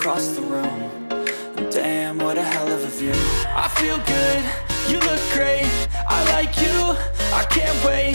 the room. And damn, what a hell of a view. I feel good, you look great, I like you, I can't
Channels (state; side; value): inverted; both; correlation -1.00